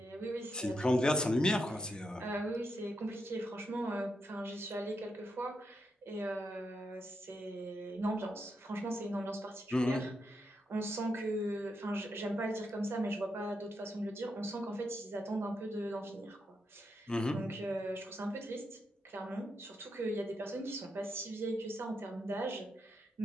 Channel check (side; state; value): both; normal; correlation 0.83